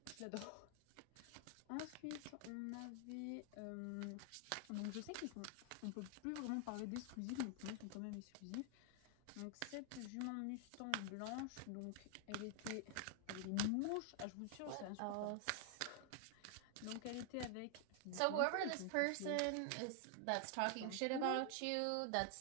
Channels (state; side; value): different; both; correlation 0.00